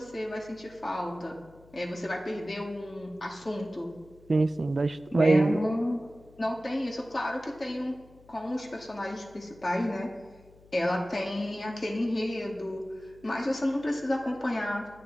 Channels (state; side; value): noise; left; hum, 25 dB below the sound